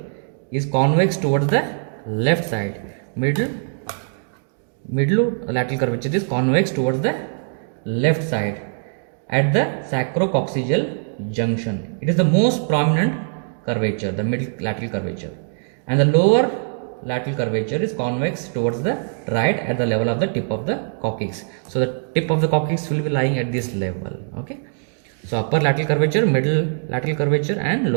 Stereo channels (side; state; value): left; silent; digital silence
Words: is convex towards the left side. Middle lateral curvature is convex towards the left side at the sacrococcygeal junction. It is the most prominent curvature, the middle lateral curvature, and the lower lateral curvature is convex towards the right at the level of the tip of the coccyx. So the tip of the coccyx will be lying at this level. Okay. So upper lateral curvature, middle lateral curvature and